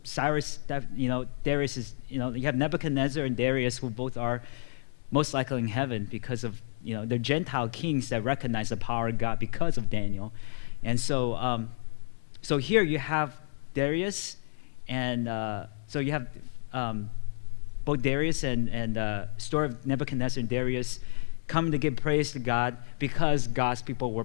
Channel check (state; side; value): silent; right; 58 dB below the other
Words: Darius is, you have Nebuchadnezzar and Darius, who both are most likely in heaven because of, they're Gentile kings that recognize the power of God because of Daniel. And so so here you have Darius, and so you have both Darius and story of Nebuchadnezzar and Darius coming to give praise to God because God's people were